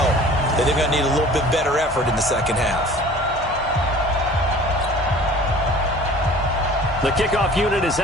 that they're going to need a little bit better effort in the second half. The kickoff unit is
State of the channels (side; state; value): both; normal; correlation 0.46